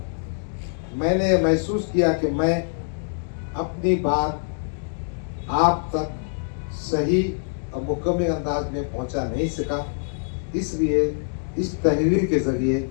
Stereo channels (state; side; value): silent; right; digital silence